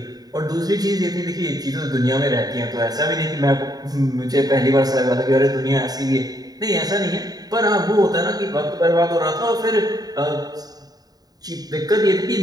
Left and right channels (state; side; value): late; left; 0.18 ms